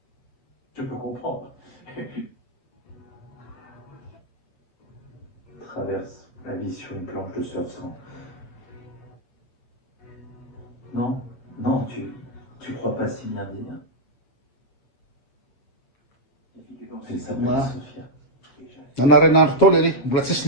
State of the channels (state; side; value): late; right; 7.5 ms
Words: Je peux comprendre. Traverse la vie sur une planche de surf sans. Non, non, tu crois pas si bien dire. Les filles dans Elle ces s'appelle Ouais. Sophia. Nanarain'andro tao le mbola